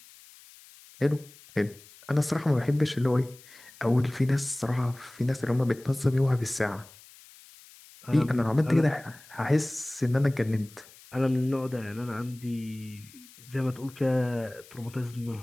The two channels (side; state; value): left; noise; hiss, 23 dB below the sound